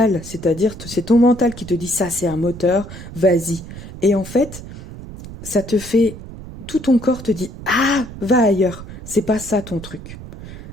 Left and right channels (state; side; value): noise; right; rumble, 13 dB below the sound